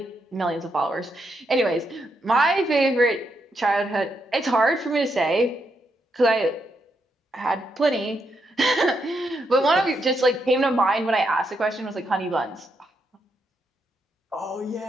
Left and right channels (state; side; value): normal; both; correlation 0.80